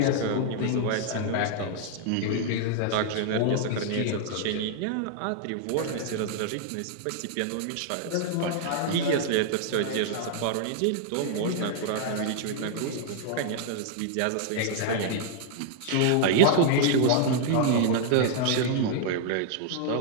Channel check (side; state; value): both; different; correlation -0.01